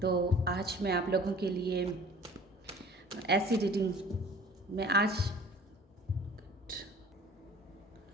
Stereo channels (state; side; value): normal; both; correlation 0.47